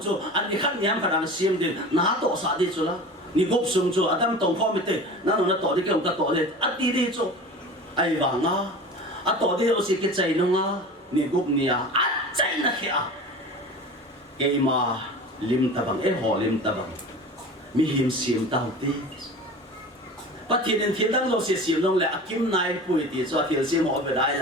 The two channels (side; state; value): both; normal; correlation 0.35